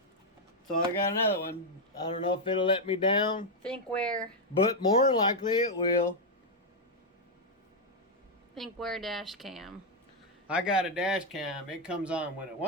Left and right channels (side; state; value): both; normal; correlation 0.00